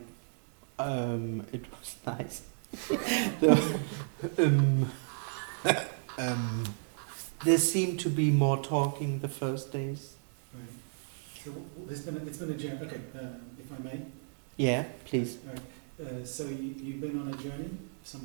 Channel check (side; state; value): left; silent; digital silence